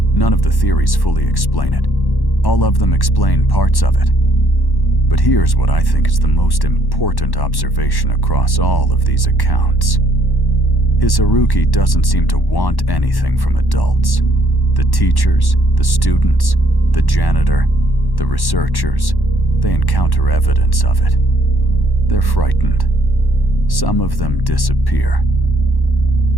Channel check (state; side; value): late; right; 1.1 ms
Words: None of the theories fully explain it. All of them explain parts of it. But here's what I think is the most important observation across all of these accounts. Hisaruki doesn't seem to want anything from adults. The teachers, the students, the janitor, the researchers, they encounter evidence of it. They're frightened. Some of them disappear.